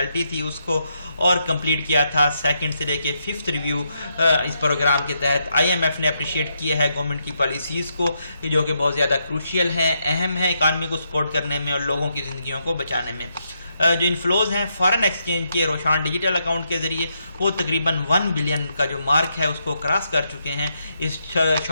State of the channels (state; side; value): inverted; both; correlation -0.80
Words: تھی اس کو، اور کمپلیٹ کیا تھا 2nd سے لے کے 5th ریویو اس پروگرام کے تحت. IMF نے اپریشیٹ کیا ہے گورنمنٹ کی پالیسیز کو جو کہ بہت زیادہ کروشیل ہیں، اہم ہیں اکانومی کو سپورٹ کرنے میں اور لوگوں کی زندگیوں کو بچانے میں. جو انفلوز ہیں فارن ایکسچینج کے روشان ڈیجیٹل اکاؤنٹ کے ذریعے وہ تقریباً 1 بلین کا جو مارک ہے اس کو کراس کر چکے ہیں اس